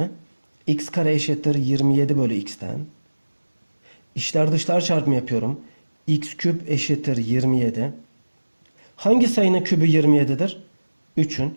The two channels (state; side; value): inverted; both; correlation -1.00